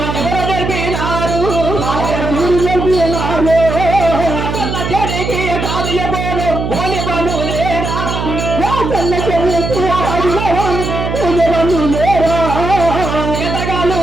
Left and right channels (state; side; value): noise; right; hum, 3 dB below the sound